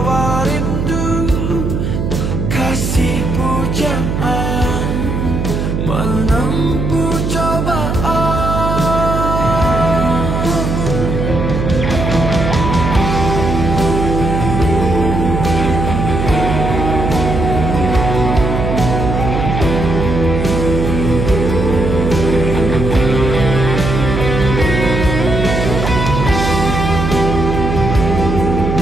rindu, kasih pujaan menempuh cobaan.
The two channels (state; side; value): noise; right; hum, 1 dB below the sound